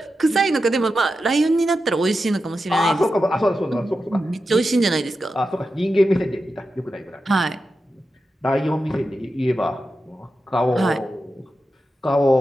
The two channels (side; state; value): both; normal; correlation 0.90